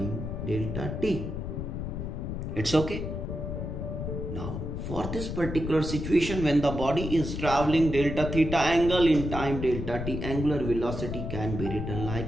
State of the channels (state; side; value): noise; left; rumble, 5 dB below the sound